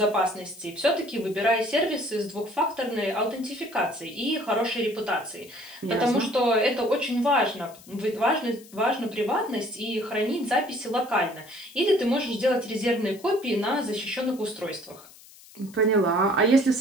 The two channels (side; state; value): left; noise; hiss, 22 dB below the sound